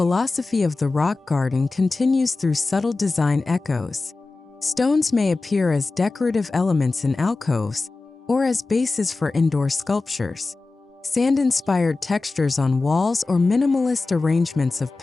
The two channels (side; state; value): right; quieter; 3.6 dB